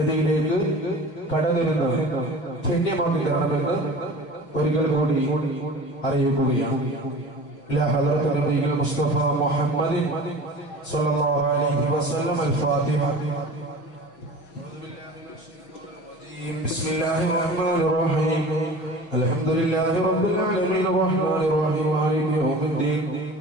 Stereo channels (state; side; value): late; right; 6.1 ms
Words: കടന്നിരുന്നത് ധന്യമാക്കി തരണമെന്ന് ഒരിക്കൽ കൂടി അറിയിക്കുകയാണ്. إلى حضرة النبي المصطفى محمد صلى الله عليه وسلم الفاتحة. بسم الله الرحمن الرحيم. الحمد لله رب العالمين الرحمن الرحيم مالك يوم الدين.